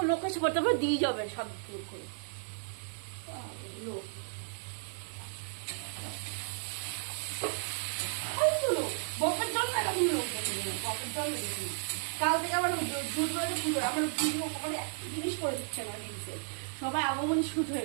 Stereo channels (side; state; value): left; silent; digital silence